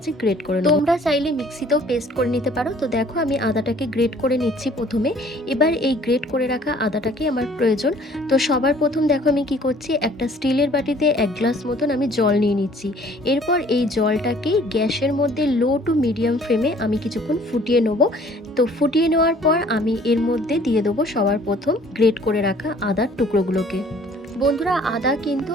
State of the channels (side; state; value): both; normal; correlation 0.55